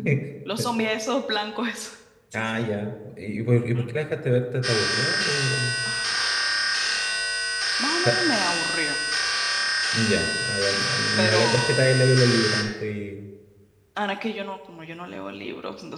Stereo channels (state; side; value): identical; both; correlation 1.00